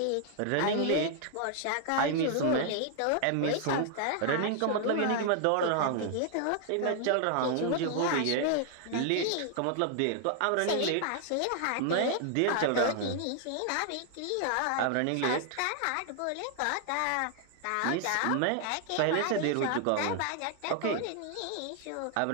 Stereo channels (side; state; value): both; different; correlation 0.00